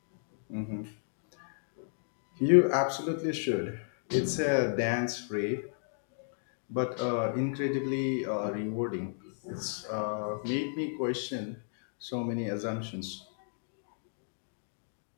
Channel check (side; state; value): right; silent; digital silence